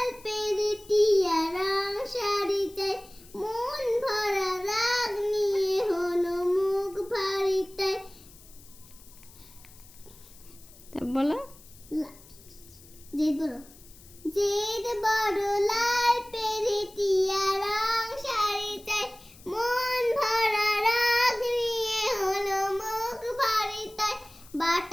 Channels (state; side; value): noise; left; hiss, 23 dB below the sound